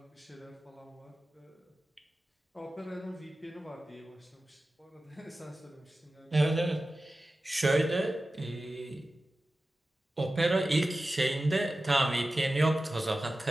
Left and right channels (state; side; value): normal; both; correlation 0.95